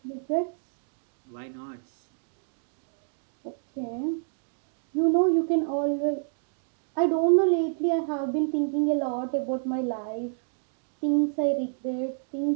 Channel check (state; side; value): silent; left; digital silence